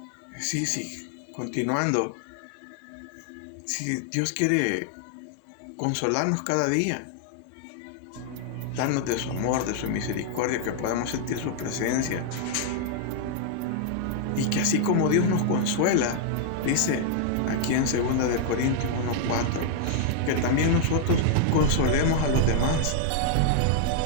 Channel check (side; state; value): both; different; correlation 0.00